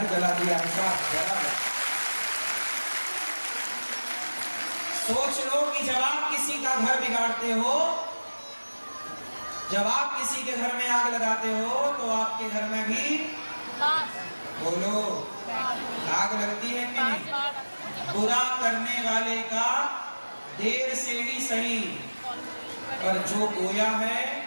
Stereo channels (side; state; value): both; inverted; correlation -1.00